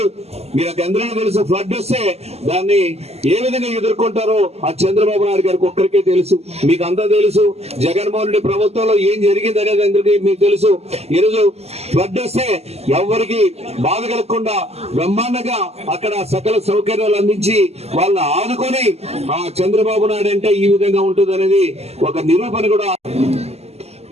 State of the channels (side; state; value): left; late; 0.30 ms